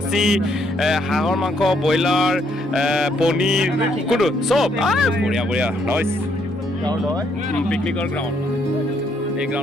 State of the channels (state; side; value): normal; both; correlation 0.71